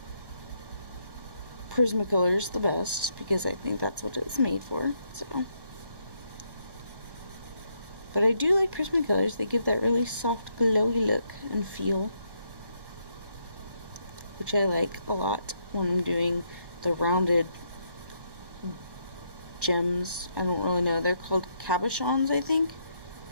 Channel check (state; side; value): late; left; 1.1 ms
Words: Prismacolors the best, because I think that's what it's made for. So, but I do like Prismacolors. They give that really soft, glowy look and feel, which I like a lot when I'm doing the rounded gems. I don't really know. They're called cabochons, I think.